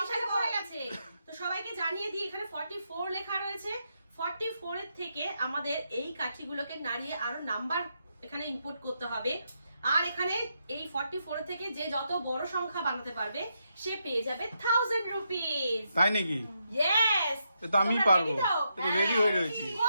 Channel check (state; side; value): inverted; both; correlation -0.81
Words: পড়ে গেছে। তো সবাইকে জানিয়ে দিই এখানে 44 লেখা রয়েছে। 44 এর থেকে আমাদের এই কাঠিগুলোকে নাড়িয়ে আরো নাম্বার এখানে ইনপুট করতে হবে। আর এখানে এই 44 থেকে যে যত বড় সংখ্যা বানাতে পারবে সে পেয়ে যাবে 1000 রুপিস। তাই নাকি? ইয়েস। তো আমি পারবো, তো রেডি হয়ে রয়েছি।